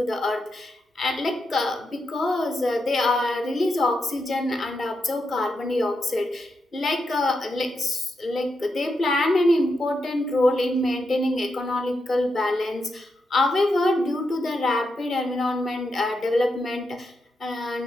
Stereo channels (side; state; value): both; normal; correlation 0.84